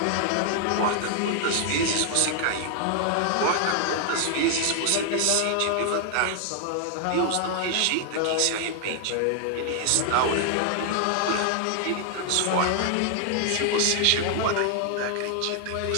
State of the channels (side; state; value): both; different; correlation 0.00